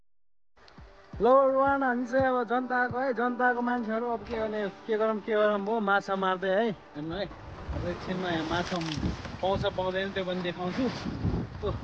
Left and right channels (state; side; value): identical; both; correlation 1.00